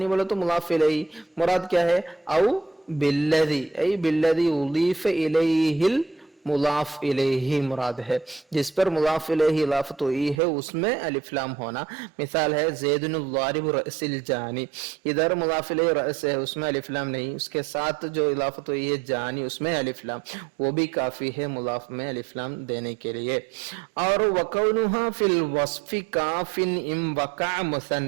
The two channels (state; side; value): drops out; left; at 10.4 s